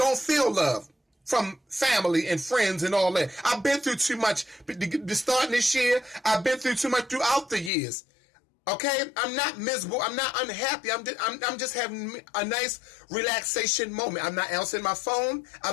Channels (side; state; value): right; drops out; at 7.7 s